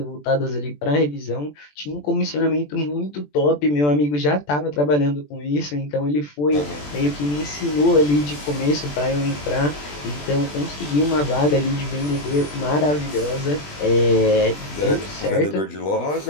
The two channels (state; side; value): late; right; 20 ms